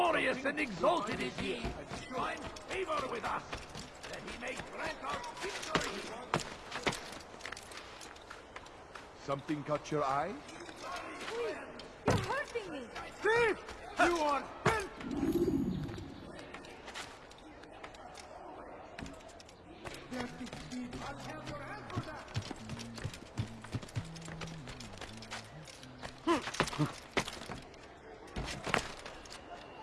and exalted is he, find favor with us, that he may grant us victory. Something caught your eye? Please, you're hurting me. Thief! You are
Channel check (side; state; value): both; identical; correlation 1.00